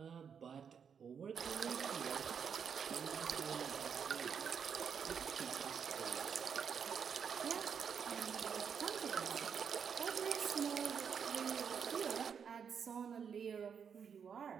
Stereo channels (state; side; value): quieter; left; 7.0 dB